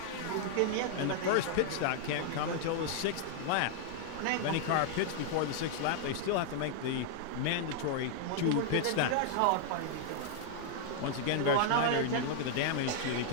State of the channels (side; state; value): both; different; correlation -0.01